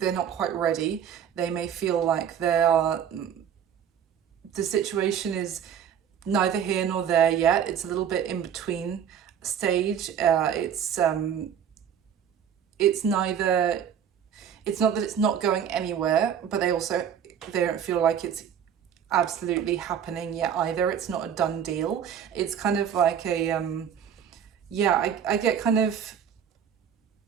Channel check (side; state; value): left; quieter; 8.5 dB